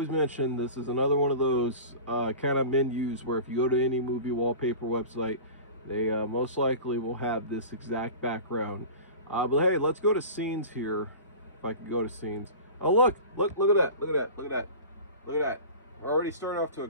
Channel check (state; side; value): inverted; both; correlation -0.36